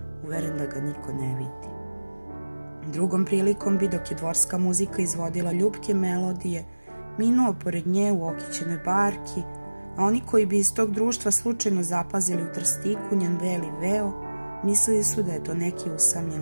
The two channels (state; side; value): inverted; both; correlation -1.00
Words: uveren da ga niko ne vidi. Drugom prilikom bi, dok je dvorska muzika izvodila ljubke melodije, minuo pored nje u okićenoj barki, a oni koji bi iz tog društva slučajno zapazili u trstiku njen beli veo, mislili su da je to neki